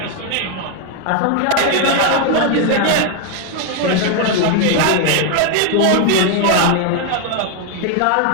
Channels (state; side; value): different; both; correlation 0.01